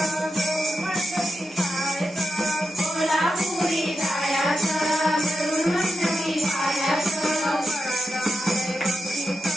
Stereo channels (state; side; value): normal; both; correlation 0.87